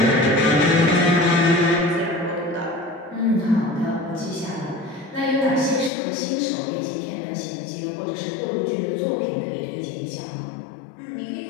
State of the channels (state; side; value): drops out; right; at 5.9 s